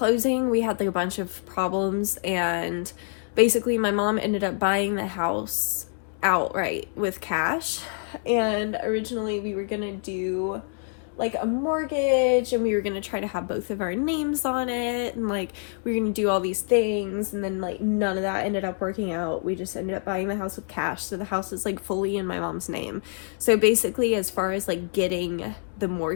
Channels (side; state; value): right; silent; 61 dB below the other